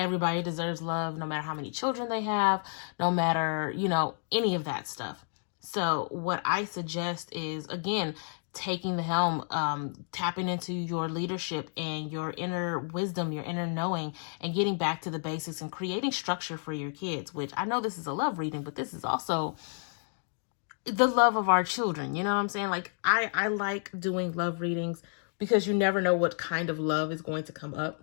deserves love, no matter how many children they have, no matter, you know, any of that stuff. So what I suggest is, again, taking the helm, tapping into your leadership and your inner wisdom, your inner knowing, and getting back to the basics and creating structure for your kids, which I know this is a love reading, but this is also the love of our children. You know what I'm saying? Like, I like doing love readings because you never know what kind of love is going to come up.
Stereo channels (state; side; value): silent; right; 57 dB below the other